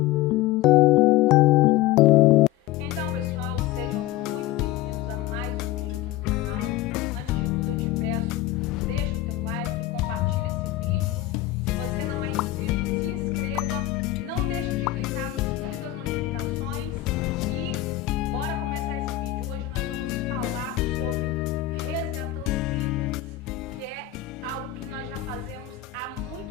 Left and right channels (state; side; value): quieter; right; 14.2 dB